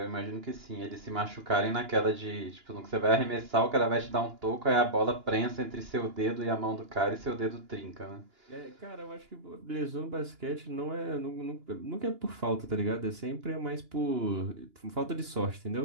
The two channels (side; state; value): left; late; 2.9 ms